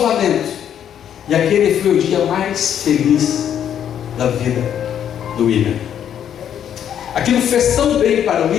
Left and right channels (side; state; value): right; quieter; 9.4 dB